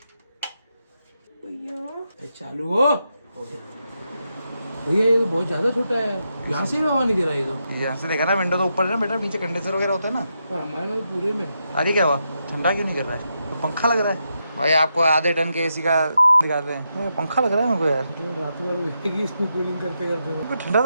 भैया चालू हो गया। भैया ये बहुत ज्यादा छोटा है, यहाँ से भी हवा नहीं दे रहा है। तो यहाँ से देखा ना, विंडो तो ऊपर है ना बेटा, नीचे कंडेंसर वगैरह होता है ना। हमारे में पूरे में अरे क्या हुआ, ठंडा क्यों नहीं कर रहा है? तो पंखा लग रहा है भाई। आपको आधे टन के एसी का दिखाते हैं, पंखा लग रहा है मेरे को यार। रात भर इसमें कूलिंग करते करते ठंडा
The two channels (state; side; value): inverted; both; correlation -0.84